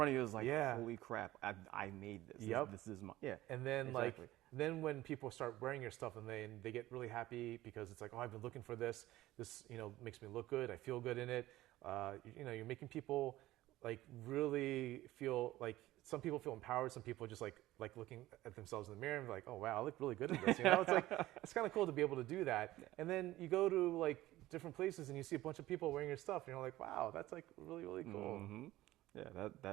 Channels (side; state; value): left; quieter; 16.3 dB